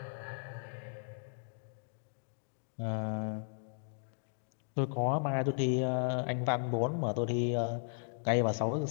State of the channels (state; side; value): silent; right; digital silence